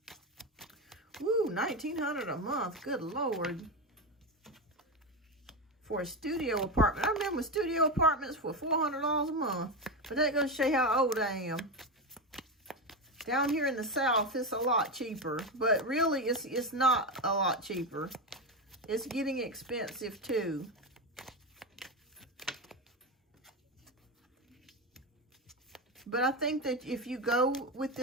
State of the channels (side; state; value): both; normal; correlation 0.15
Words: Woo, $1,900 a month. Good Lord. For a studio apartment. I remember studio apartments were $400 a month. But that goes to show you how old I am. Down here in the South, it's a lot cheaper. But really, it's not a lot cheaper. It's getting expensive too. But I think that if you go with